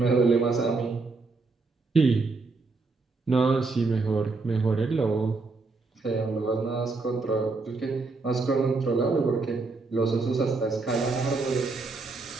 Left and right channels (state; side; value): quieter; left; 3.8 dB